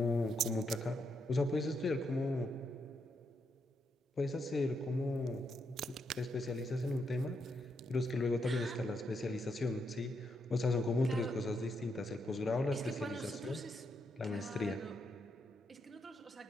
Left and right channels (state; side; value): normal; both; correlation 0.80